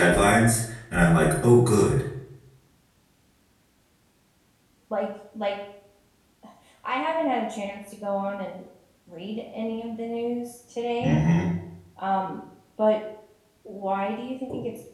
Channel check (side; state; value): both; identical; correlation 1.00